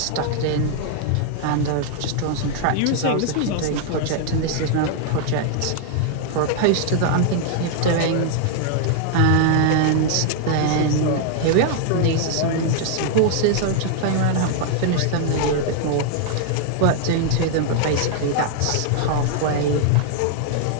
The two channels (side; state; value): both; different; correlation 0.00